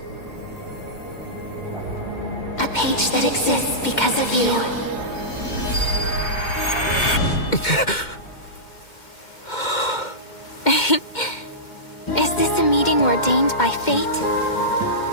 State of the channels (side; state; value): right; late; 2.1 ms